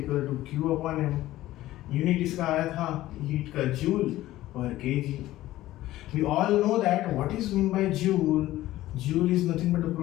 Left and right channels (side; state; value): right; quieter; 15.5 dB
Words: Q/m। यूनिट इसका आया था हीट का जूल पर kg. We all know that what is mean by joule. Joule is nothing but the